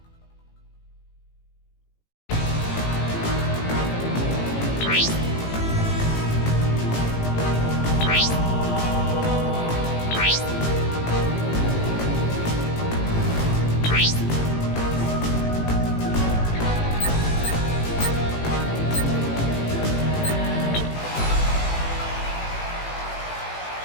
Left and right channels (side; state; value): right; late; 18 ms